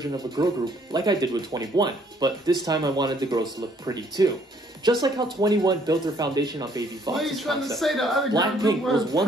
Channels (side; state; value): both; normal; correlation 0.64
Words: of a girl group like I did with 21, but this time I wanted the girls to look pretty too." Just like how 21 built their foundation on Baby Vox's concept, BLACKPINK was